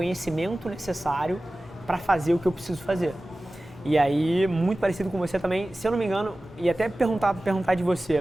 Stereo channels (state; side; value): normal; both; correlation 0.96